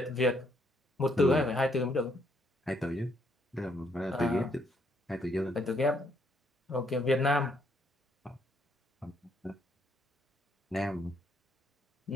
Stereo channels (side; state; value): both; normal; correlation 0.71